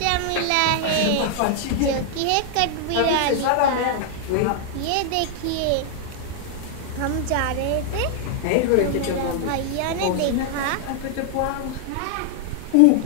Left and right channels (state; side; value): different; both; correlation 0.00